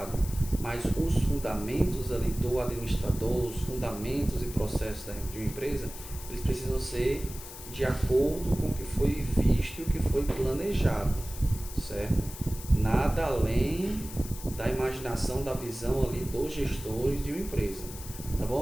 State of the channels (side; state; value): left; noise; hiss, 13 dB below the sound